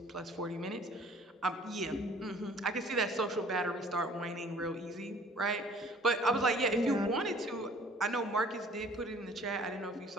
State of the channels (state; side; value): normal; both; correlation 0.53